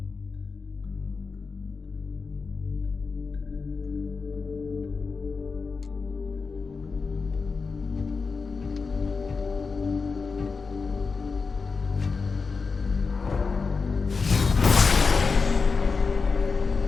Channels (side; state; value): right; quieter; 4.7 dB